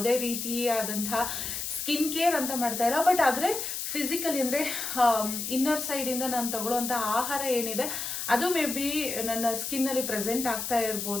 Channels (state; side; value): noise; left; hiss, 4 dB below the sound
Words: ರೀತಿಯಾದಂತಹ ಸ್ಕಿನ್ ಕೇರ್ ಅಂತ ಮಾಡ್ತಾ ಇಲ್ಲ. ಬಟ್ ಆದರೆ ಫಿಸಿಕಲಿ ಅಂದರೆ ಇನ್ನರ್ ಸೈಡಿಂದ ನಾನು ತಗೊಳ್ಳೋವಂಥ ಆಹಾರ ಏನಿದೆ ಅದು ಮೇ ಬಿ ನನ್ನ ಸ್ಕಿನ್ನಲ್ಲಿ ಪ್ರೆಸೆಂಟ್ ಆಗ್ತಾ